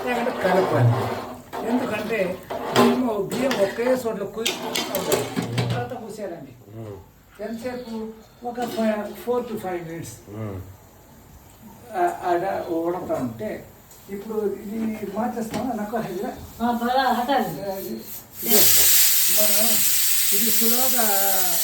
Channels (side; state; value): both; identical; correlation 1.00